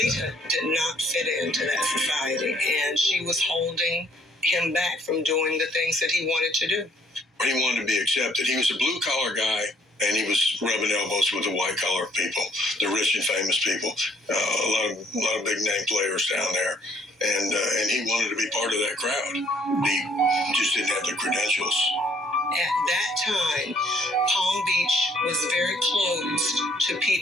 did not fit into that society, and she was holding him back from doing the things that he wanted to do. He wanted to be accepted. He was a blue-collar guy, and he was rubbing elbows with the white-collar people, the rich and famous people, a lot of big-name players down there, and he wanted to be part of that crowd. He just didn't have the credentials. At that time, Palm Beach was very closed to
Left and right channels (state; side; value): normal; both; correlation 0.64